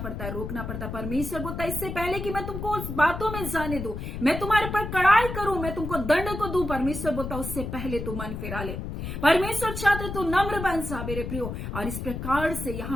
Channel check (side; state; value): left; noise; rumble, 6 dB below the sound